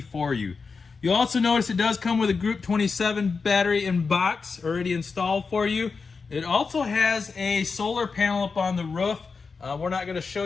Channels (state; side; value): quieter; right; 4.8 dB